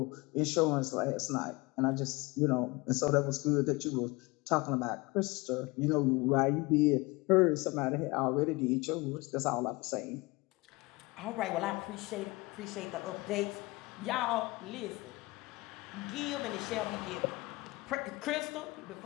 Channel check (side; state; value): right; quieter; 23.4 dB